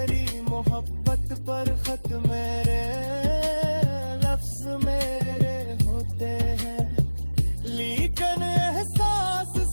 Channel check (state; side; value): inverted; both; correlation -1.00